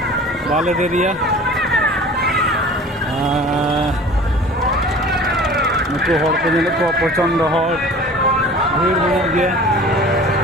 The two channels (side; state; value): both; normal; correlation 0.43